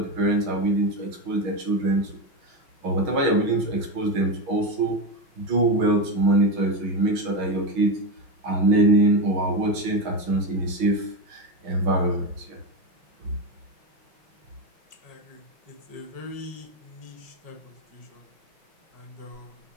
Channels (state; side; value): late; left; 6.2 ms